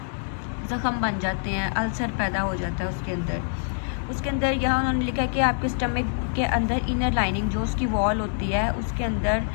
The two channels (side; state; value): right; silent; digital silence